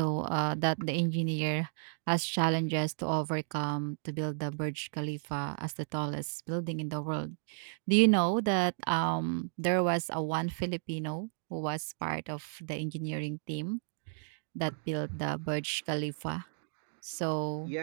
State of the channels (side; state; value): left; silent; digital silence